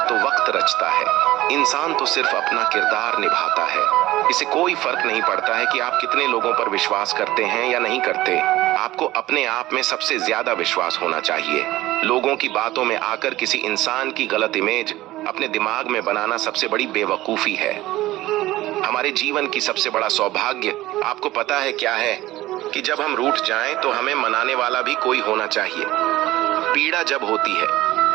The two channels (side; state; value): left; quieter; 16.7 dB